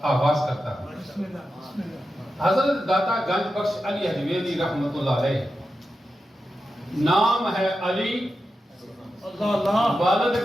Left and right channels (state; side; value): normal; both; correlation 0.90